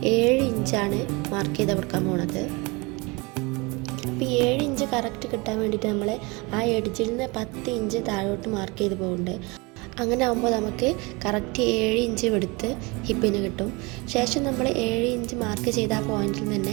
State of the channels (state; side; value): quieter; left; 26.6 dB